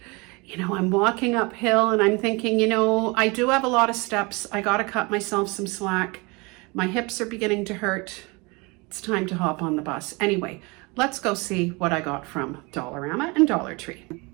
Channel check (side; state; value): left; quieter; 27.1 dB